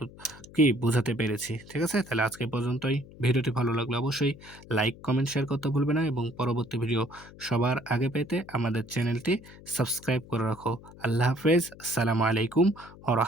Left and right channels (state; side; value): noise; left; hum, 19 dB below the sound